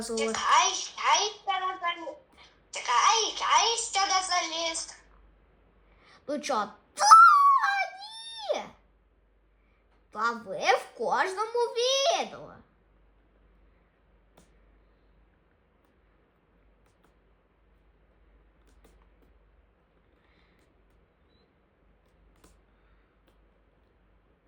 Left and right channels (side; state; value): both; identical; correlation 1.00